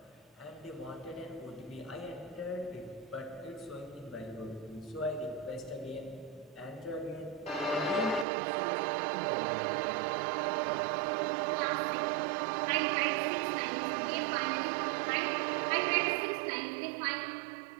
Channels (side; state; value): left; drops out; at 8.2 s